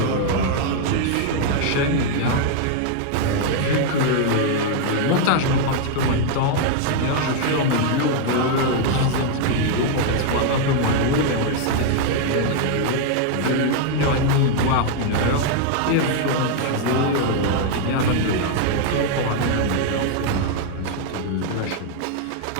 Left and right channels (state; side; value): different; both; correlation 0.00